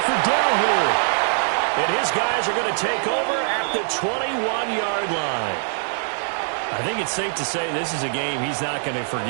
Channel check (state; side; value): silent; left; digital silence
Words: for down here. And his guys are going to take over at the 21-yard line. I think it's safe to say this is a game he's not going to